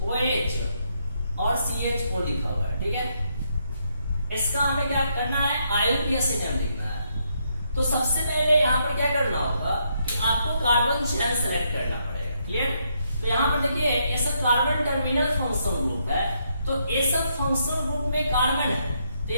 और CHO लिखा हुआ है, ठीक है। इसका हमें क्या करना है, IUPAC नेम लिखना है। तो सबसे पहले यहाँ पर क्या करना होगा कि आपको कार्बन चेन सेलेक्ट करना पड़ेगा। क्लियर? तो यहाँ पर देखिए ये सब कार्बन टर्मिनल फंक्शनल ग्रुप है, तो ये सब फंक्शनल ग्रुप में कार्बन है, तो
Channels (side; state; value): both; inverted; correlation -0.76